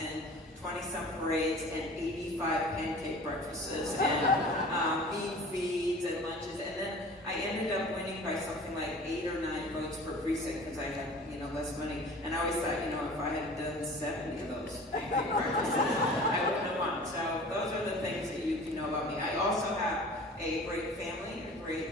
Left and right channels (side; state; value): both; normal; correlation 0.43